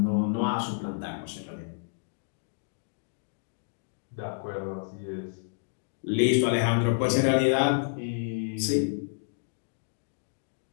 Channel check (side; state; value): right; silent; digital silence